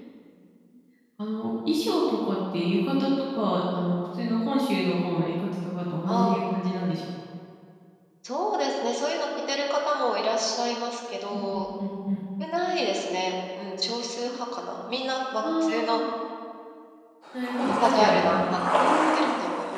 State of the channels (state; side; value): identical; both; correlation 1.00